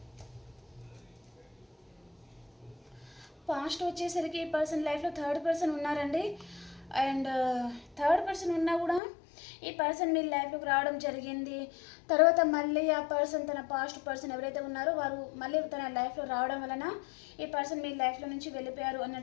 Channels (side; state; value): right; drops out; at 9.0 s